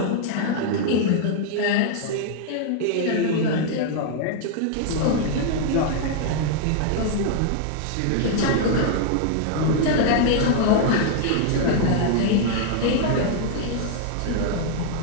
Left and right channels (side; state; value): both; different; correlation -0.01